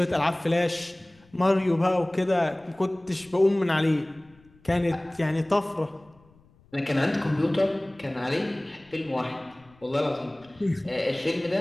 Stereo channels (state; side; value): noise; left; rumble, 29 dB below the sound